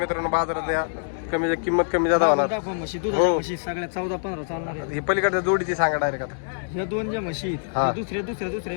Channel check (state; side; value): silent; right; digital silence